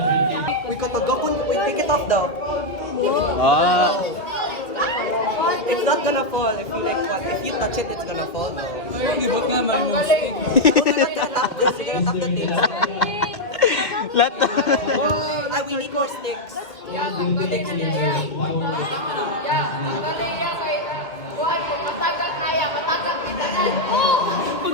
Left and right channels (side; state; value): right; late; 2.3 ms